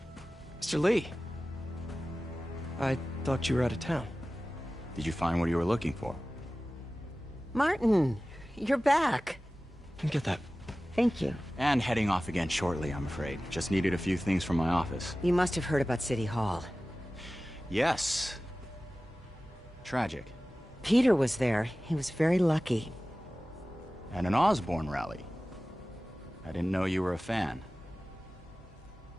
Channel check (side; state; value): both; normal; correlation 0.96